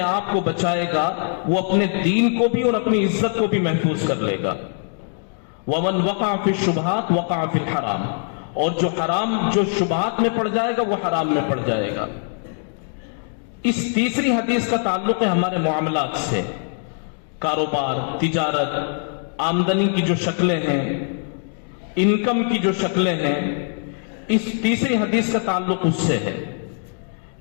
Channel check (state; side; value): silent; right; 56 dB below the other